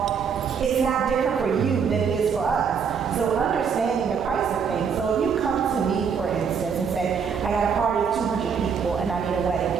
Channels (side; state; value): left; quieter; 6.5 dB